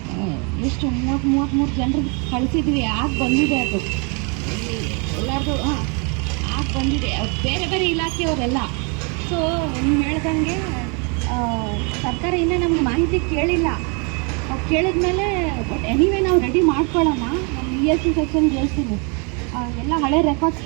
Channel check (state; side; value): quieter; left; 34.2 dB